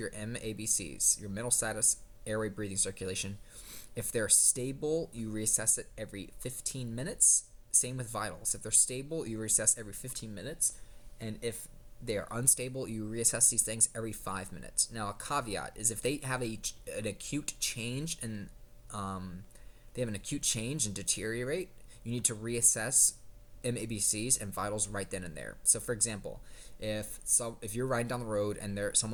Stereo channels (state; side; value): identical; both; correlation 1.00